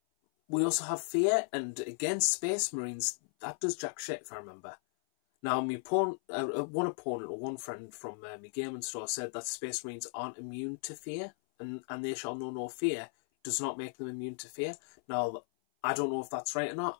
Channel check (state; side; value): silent; right; 54 dB below the other